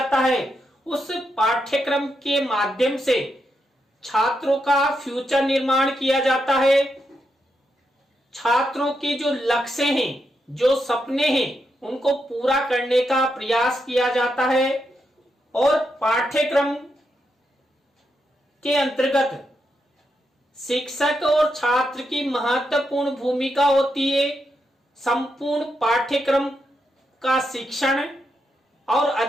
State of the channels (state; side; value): normal; both; correlation 0.83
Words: है, उस पाठ्यक्रम के माध्यम से छात्रों का फ्यूचर निर्माण किया जाता है। छात्रों के जो लक्ष्य हैं, जो सपने हैं, उनको पूरा करने का प्रयास किया जाता है और पाठ्यक्रम के अंतर्गत शिक्षक और छात्र की महत्वपूर्ण भूमिका होती है। संपूर्ण पाठ्यक्रम का शिक्षण और